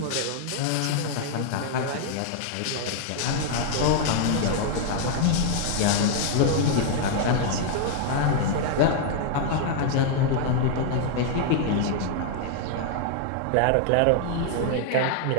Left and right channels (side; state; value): both; different; correlation 0.00